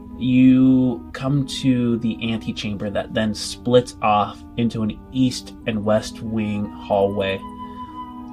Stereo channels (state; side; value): identical; both; correlation 1.00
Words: you come to the antechamber that then splits off into an east and west wing hallway.